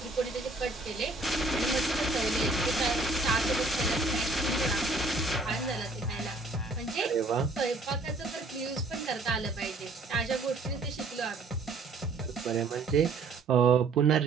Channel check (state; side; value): quieter; left; 3.3 dB